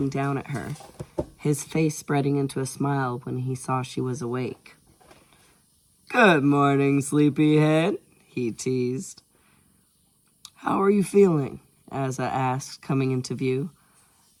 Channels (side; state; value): both; identical; correlation 1.00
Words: down at her, his face spreading into a smile when he saw she was awake. "Good morning, sleepyhead," he teased. "How are you feeling?" Asa asked, coming into view.